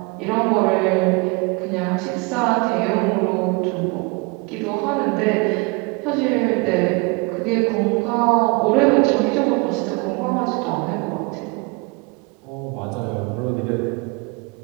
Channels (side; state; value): left; quieter; 28.9 dB